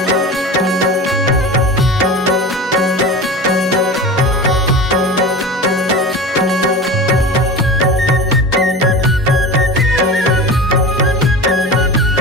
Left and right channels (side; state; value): both; normal; correlation 0.32